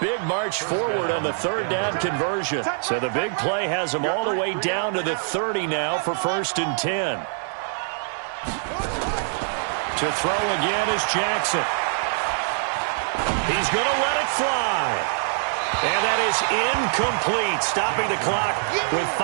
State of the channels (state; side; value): silent; left; 63 dB below the other